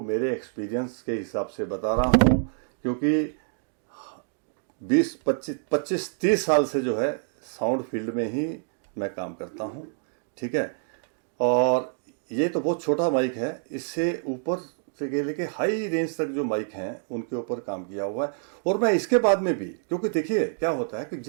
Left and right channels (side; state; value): left; silent; digital silence